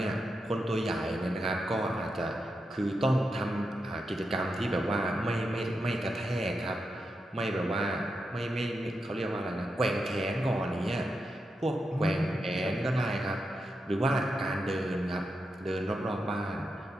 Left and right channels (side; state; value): both; normal; correlation 0.87